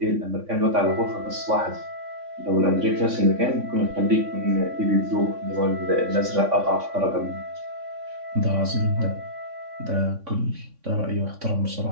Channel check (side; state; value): left; late; 3.6 ms